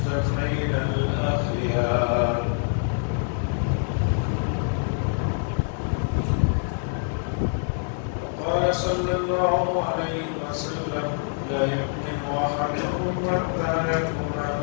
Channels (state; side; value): silent; right; 62 dB below the other